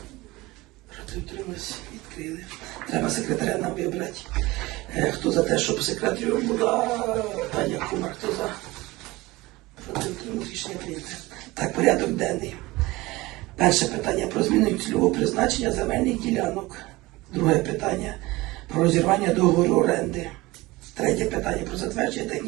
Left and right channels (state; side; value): quieter; left; 20.6 dB